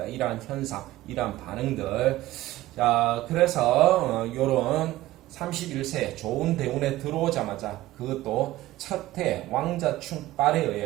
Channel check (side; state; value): left; quieter; 16.4 dB